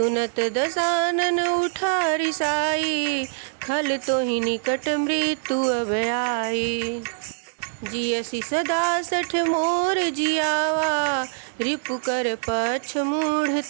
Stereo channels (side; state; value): left; silent; digital silence